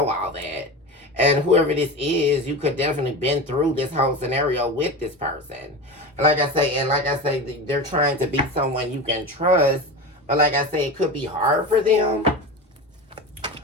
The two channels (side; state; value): both; normal; correlation 0.27